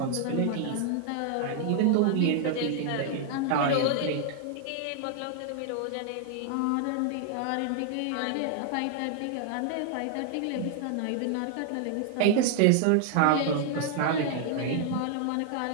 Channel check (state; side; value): different; both; correlation 0.00